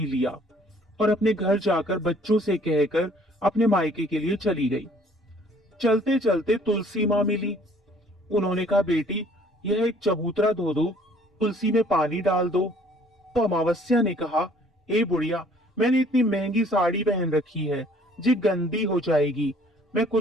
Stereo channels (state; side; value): normal; both; correlation 0.57